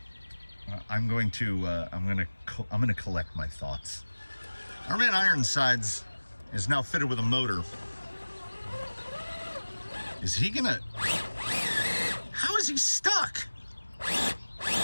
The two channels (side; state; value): both; inverted; correlation -1.00